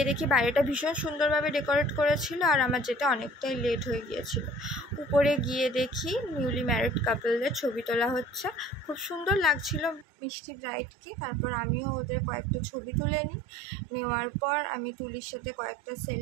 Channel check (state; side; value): drops out; left; at 10.1 s